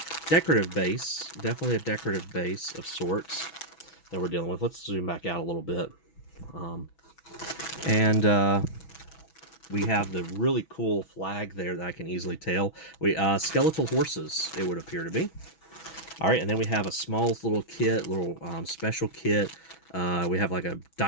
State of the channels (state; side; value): late; right; 6.1 ms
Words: decorative base, definitely a decorative base of sorts that we're dealing with. Let's zoom back out a little bit. We have the really cool flag there that I can easily tell. Skeletal horses, it would appear to be. All right, and then we have a small little kit, little special kit. We have like a